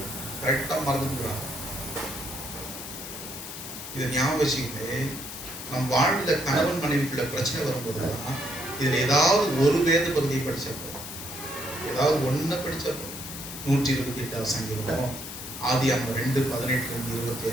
கரெக்டா மறந்துக்கிறாங்க. இதை ஞாபகம் வச்சுக்கிட்டு நம் வாழ்ல கணவன் மனைவிக்குள்ள பிரச்சனை வரும்போதுதான் இதுல ஏதாவது ஒரு வேத பகுதியை படிச்சப்போ, ஏதாவது ஒண்ணு படிச்சப்போ, 128வது சங்கீதமோ, ஆதியாகமம்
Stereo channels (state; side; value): noise; left; hiss, 9 dB below the sound